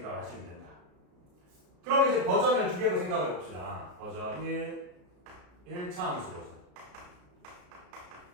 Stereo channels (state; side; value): late; left; 33 ms